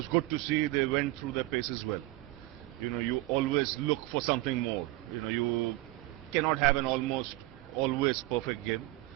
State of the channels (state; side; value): quieter; left; 18.5 dB